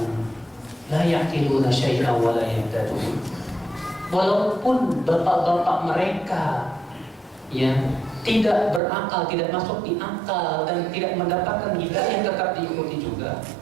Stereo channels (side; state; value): left; drops out; at 8.8 s